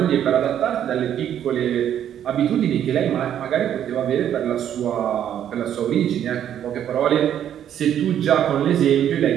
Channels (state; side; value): quieter; left; 10.1 dB